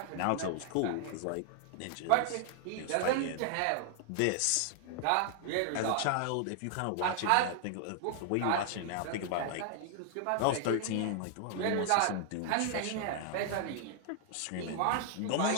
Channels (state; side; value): different; both; correlation 0.00